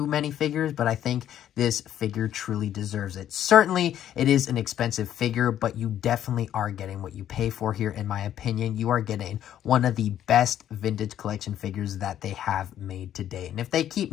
many figures, but I think this figure truly deserves it. Certainly, it is an expensive figure, but you definitely are getting what you pay for here, in my opinion. You are getting one of the best vintage collection figures that they have made to date. And if they keep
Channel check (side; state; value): right; quieter; 11.0 dB